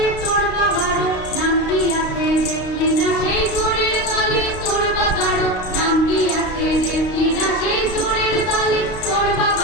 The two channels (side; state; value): right; late; 32 ms